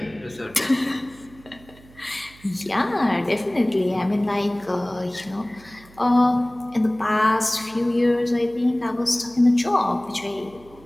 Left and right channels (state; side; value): noise; right; hum, 24 dB below the sound